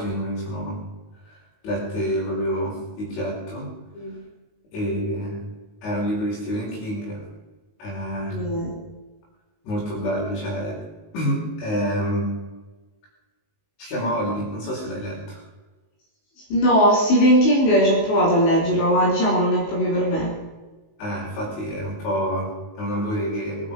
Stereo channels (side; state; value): right; late; 19 ms